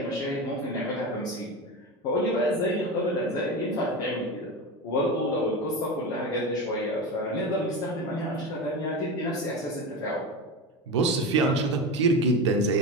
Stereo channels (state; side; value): normal; both; correlation 0.23